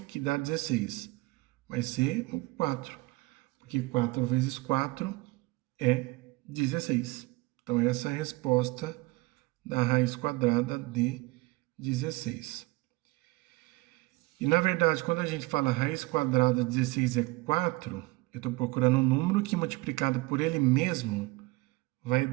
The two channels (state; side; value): quieter; left; 22.2 dB